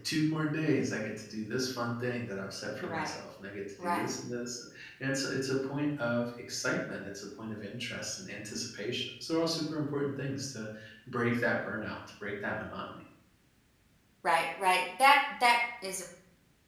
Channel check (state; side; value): identical; both; correlation 1.00